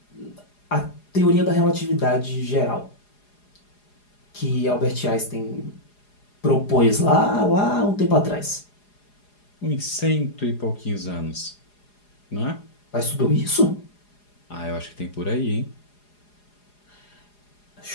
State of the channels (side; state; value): right; late; 4.8 ms